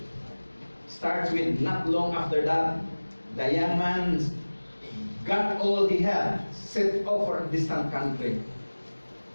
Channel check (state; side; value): inverted; both; correlation -1.00